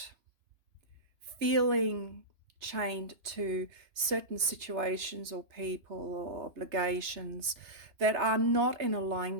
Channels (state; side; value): late; left; 3.3 ms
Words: feeling chained to certain situations or people or obligations that are not in